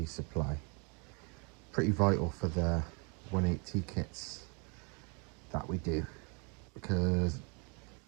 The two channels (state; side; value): quieter; left; 33.6 dB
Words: supply. Pretty vital for the 180 kits that we do, because